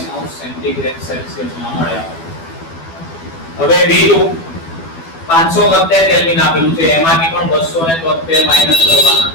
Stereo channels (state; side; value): late; right; 12 ms